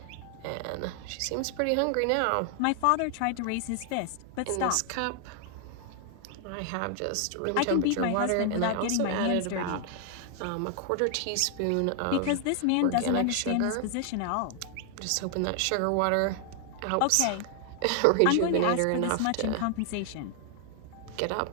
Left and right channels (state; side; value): different; both; correlation 0.00